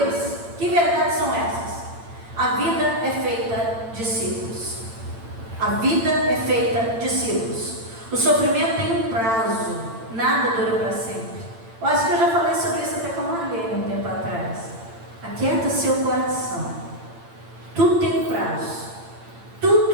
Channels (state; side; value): late; left; 8.8 ms